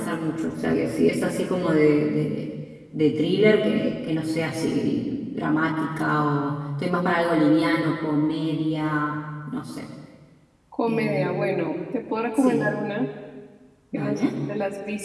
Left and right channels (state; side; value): identical; both; correlation 1.00